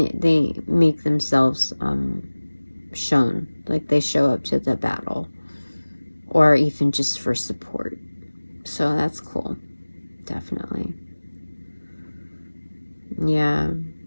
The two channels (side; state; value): both; inverted; correlation -1.00